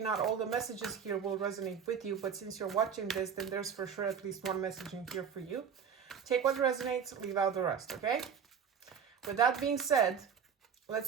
all the messages here will resonate with you, but since you're watching this, then there's for sure at least one message in here for you. Take what resonates, leave out the rest, okay? With that being said,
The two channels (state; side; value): quieter; left; 7.1 dB